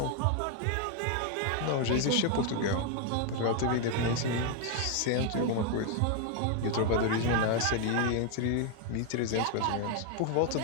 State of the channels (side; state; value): both; different; correlation 0.01